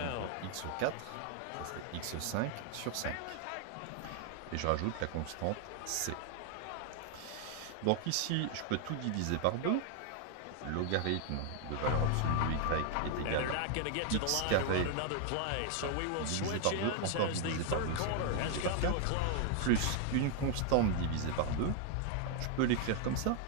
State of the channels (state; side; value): different; both; correlation 0.00